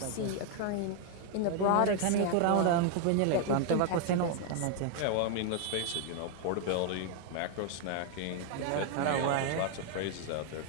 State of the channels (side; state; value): both; different; correlation 0.00